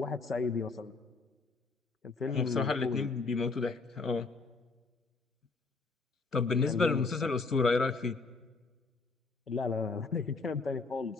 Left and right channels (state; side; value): quieter; right; 4.1 dB